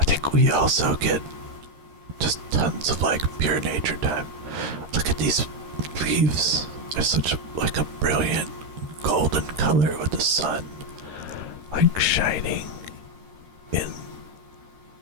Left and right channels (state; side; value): late; left; 13 ms